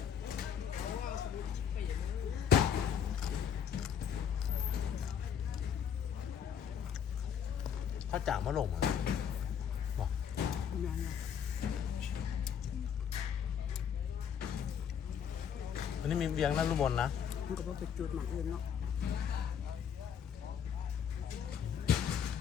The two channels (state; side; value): quieter; right; 8.1 dB